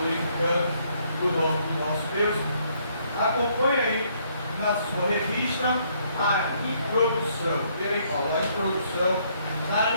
o nome do nosso Deus. Acompanhe aí na sua revista a introdução. Vê aí, Paulo, a introdução na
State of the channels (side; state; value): both; inverted; correlation -0.69